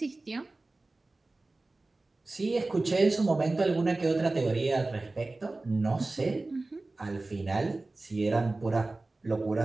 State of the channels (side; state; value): left; quieter; 3.1 dB